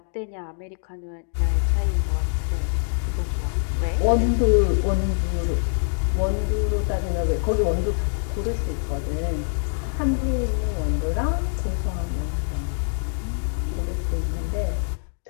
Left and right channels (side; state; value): right; silent; digital silence